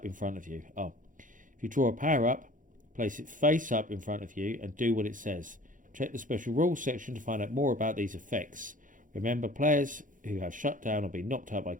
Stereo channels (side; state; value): left; late; 0.38 ms